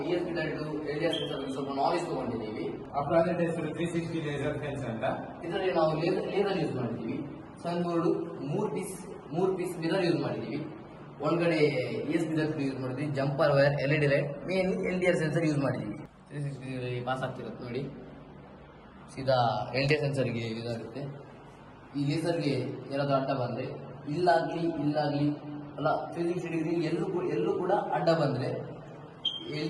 ESP ಡೈರೆಕ್ಟ್ LDR ಸೆನ್ಸರ್ ಬಗ್ಗೆ ಸ್ವಲ್ಪ ನಾಲೆಜ್ ತಗೊಂಡಿದ್ದೀವಿ. ಆ ಪ್ರಾಜೆಕ್ಟ್ ಹೆಸರು 360 ಲೇಸರ್ ಸೆನ್ಸ್ ಅಂತ. ಇದರಲ್ಲಿ ನಾವು ಲೇಸರ್ ಯೂಸ್ ಮಾಡಿದ್ದೀವಿ. ಸನ್ ಬೋರ್ಡ್ ಮೂರು ಪೀಸ್ ಮಿರರ್ ಯೂಸ್ ಮಾಡಿದ್ದೀವಿ. ಒಂದ್ಗಡೆ ESP ಡೈರೆಕ್ಟ್ ಯೂಸ್ ಮಾಡಿದ್ವಿ, jumper wire, LED light, main LDR sensor use ಮಾಡಿದ್ದೀವಿ. 360 ಪಾಸ್ ಆಗ್ತಿರುತ್ತೆ ನೋಡಿ. ಸೀದಾ LDR ಸೆನ್ಸರ್ಗೆ ಇದಾಗುತ್ತೆ. ಈ ಲೇಸರ್ಗೆ ಏನಾದರೂ ಅಡ್ಡ ಬಂದರೆ ಇಲ್ಲಾಗ್ಲಿ ಅಲ್ಲ 360 ಡಿಗ್ರಿ ಎಲ್ಲೂ ಕೂಡ ಅಡ್ಡ ಬಂದರೆ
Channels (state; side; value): identical; both; correlation 1.00